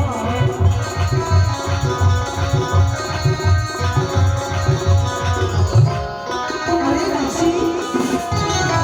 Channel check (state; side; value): identical; both; correlation 1.00